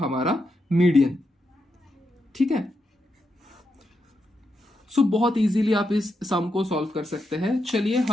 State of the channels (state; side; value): normal; both; correlation 0.84